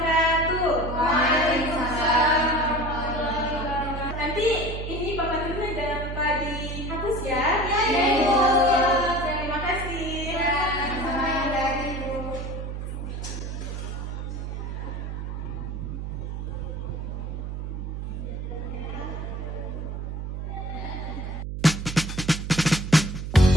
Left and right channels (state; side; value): noise; right; hum, 5 dB below the sound